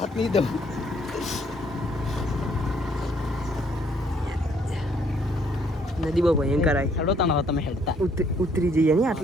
નહીં દઉં. નદી બહુ ભયંકર આવી. હેડો તાના તમે હેડતા ઉતરી જઈએ ને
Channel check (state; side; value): normal; both; correlation 0.66